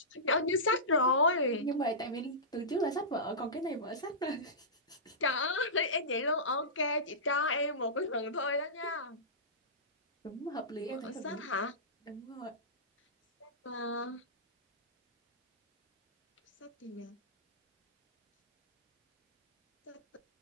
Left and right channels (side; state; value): both; normal; correlation -0.19